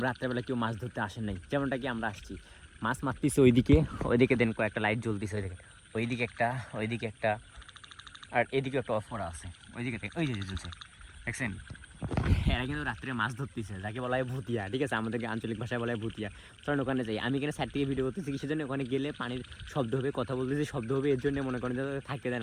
রাত্রেবেলা কেউ মাছ ধরতে আসেন নাই, যেমনটা কি আমরা আসছি। মাছ মারতেছি ওইদিকে দেন কয়েকটা লাইট জ্বলতেছে, ওইদিকে একটা আর এদিকে একটা অফ করা আছে, ওই যে জ্বলছে, দেখছেন? এরা কিন্তু রাত্রে মাছ ধরতেছে, যাকে বলা হয় ভুতিয়া, ঠিক আছে? আমাদের আঞ্চলিক ভাষায় বলা হয় ভুতিয়া। চলেন ওখানে যাই। আমি এখানে সাইড থেকে ভিডিও করতেছি, কিসের জন্য? ওখানে গেলে পানির শব্দ হবে, কথা বলতেছি শব্দ হবে, এর জন্য মনে করেন যে থাকতে দেয়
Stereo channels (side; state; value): both; identical; correlation 1.00